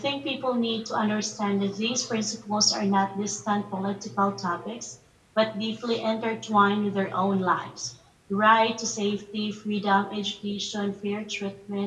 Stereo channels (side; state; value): both; identical; correlation 1.00